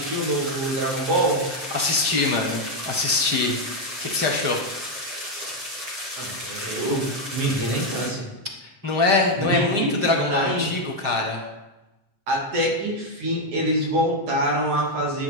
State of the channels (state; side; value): late; left; 7.7 ms